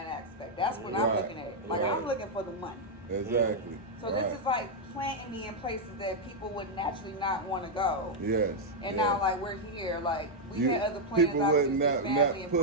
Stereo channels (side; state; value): both; normal; correlation -0.02